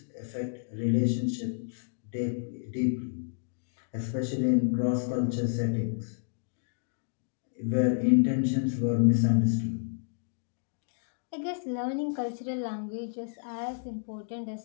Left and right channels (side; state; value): right; silent; digital silence